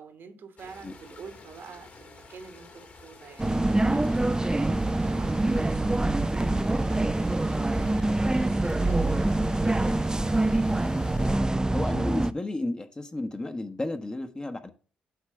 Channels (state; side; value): normal; both; correlation 0.97